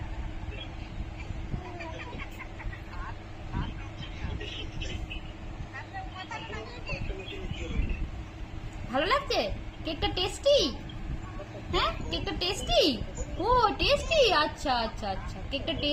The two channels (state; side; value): identical; both; correlation 1.00